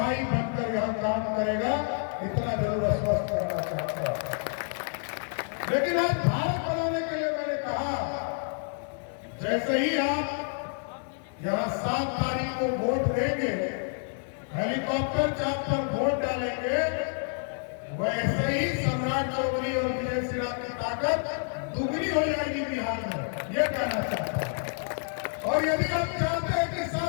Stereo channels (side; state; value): right; silent; 59 dB below the other